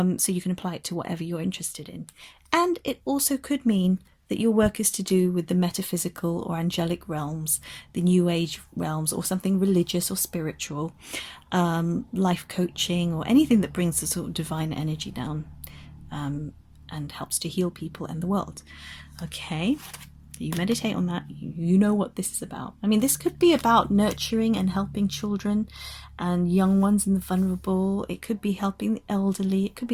you can apply it to whatever you're interested in. And it also could mean that your work is to do with the metaphysical or angelic realms, the new age realms, or something religious or spiritual, life coaching, or anything that brings the sort of divine energy down and helps to heal people and the world. Okay, you meditate on that, you know what this is about. I mean, this could be about nurturing and helping children and young ones and the vulnerable. It could be helping the elderly. It could be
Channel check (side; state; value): both; identical; correlation 1.00